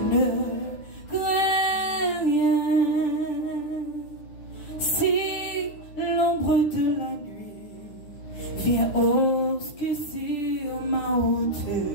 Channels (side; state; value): right; late; 10 ms